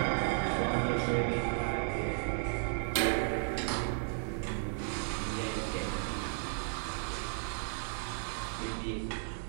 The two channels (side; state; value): left; silent; digital silence